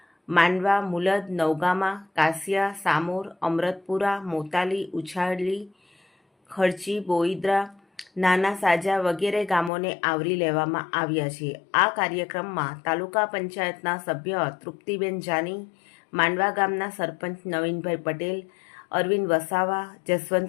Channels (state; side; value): drops out; right; at 9.7 s